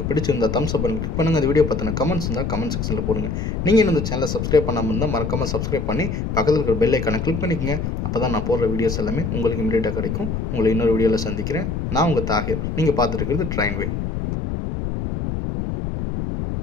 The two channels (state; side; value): noise; left; rumble, 2 dB below the sound